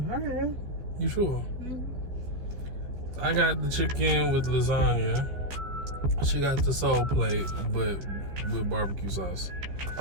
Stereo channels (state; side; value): late; left; 14 ms